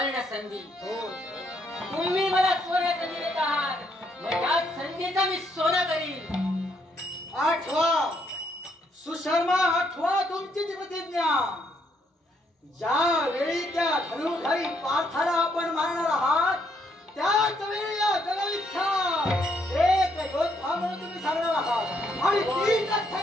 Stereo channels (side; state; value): both; normal; correlation 0.73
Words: संधी. तुम्ही मला सुवर्ण संधी देत आहात, मग या संधीचा मी सोनं करीन. आठवा सुशर्मा, आठवा तुमची ती प्रतिज्ञा. ज्या वेळी त्या धनुधारी पार्थाला आपण मारणार आहात त्याच वेळी या जगविख्यात एक योद्धा म्हणून तुम्ही सांगणार आहात. आणि